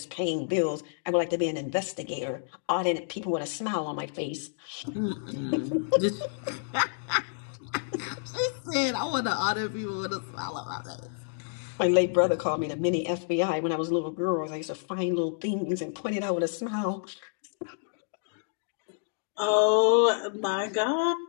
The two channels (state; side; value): silent; right; digital silence